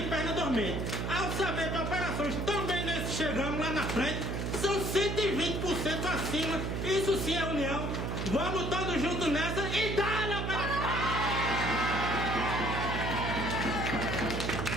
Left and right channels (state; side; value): noise; right; hum, 2 dB below the sound